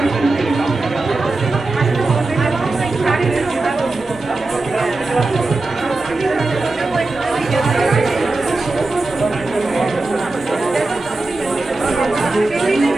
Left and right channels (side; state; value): left; quieter; 3.2 dB